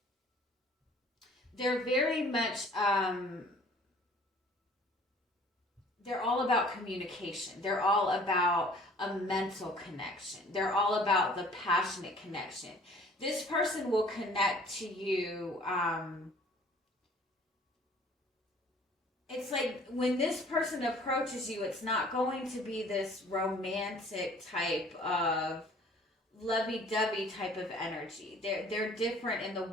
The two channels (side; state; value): both; normal; correlation 0.53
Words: They're very much. They're all about communication. They're all about a mental connection. They're all about the passionate connection. This person will connect to you. It's like when this person approaches you, it's not going to be this romantic type of lovey-dovey type of energy. They're different in the